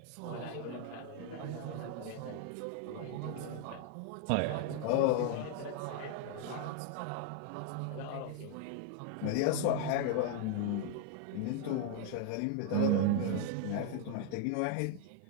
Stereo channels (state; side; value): different; both; correlation 0.00